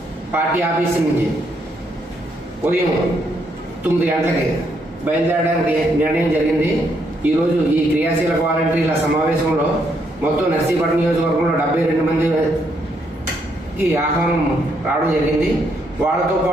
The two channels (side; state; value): both; normal; correlation 0.75